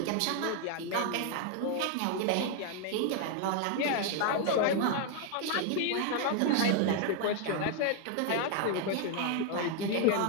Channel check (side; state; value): both; different; correlation 0.00